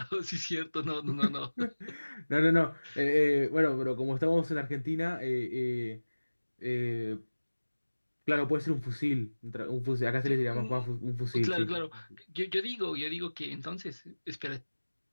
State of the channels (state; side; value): inverted; both; correlation -1.00